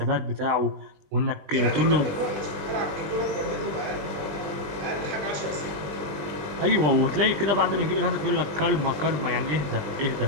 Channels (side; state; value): left; late; 20 ms